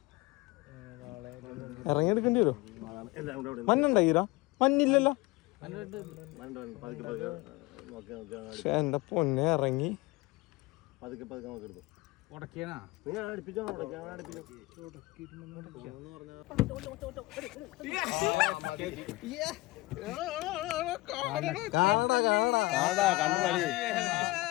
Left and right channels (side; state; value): right; quieter; 21.4 dB